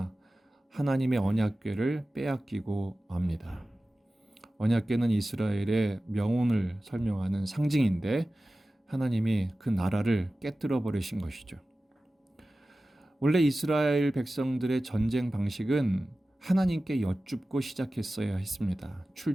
하나님의 언약궤를 빼앗기고 맙니다. 언약궤는 이스라엘의 명운을 설명하는 상징인데 하나님이 그 나라를 깨뜨려 버리신 것이죠. 원래 이스라엘 백성들의 전쟁 방식은 하나님께 여쭙고 시작했어야 했습니다.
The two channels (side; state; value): both; normal; correlation 0.96